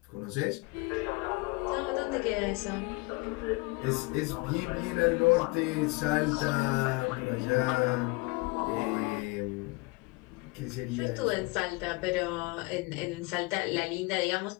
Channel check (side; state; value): right; quieter; 25.8 dB